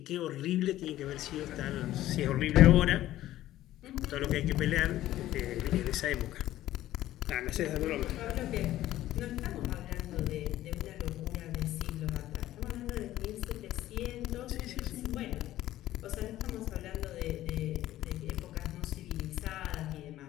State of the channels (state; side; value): quieter; right; 14.2 dB